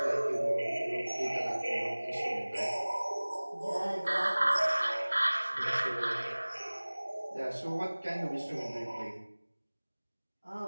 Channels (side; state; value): both; inverted; correlation -1.00